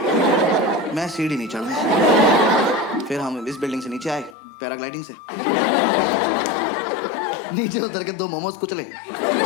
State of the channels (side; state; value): right; drops out; at 4.4 s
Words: मैं सीढ़ी नहीं चढ़ूंगा। फिर हम इस बिल्डिंग से नीचे आए पैराग्लाइडिंग से, नीचे उतर के 2 मोमोज कुचले।